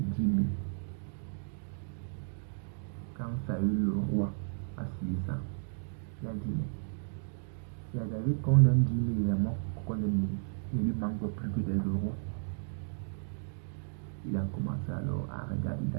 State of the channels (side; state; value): left; silent; digital silence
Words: 000. Quand Saül, le roi, a suivi ça, il a dit, mais c'est à David qu'on donne 10 000 et à moi qu'on donne 1000. Il ne lui manque plus que d'être roi. Il a commencé alors à regarder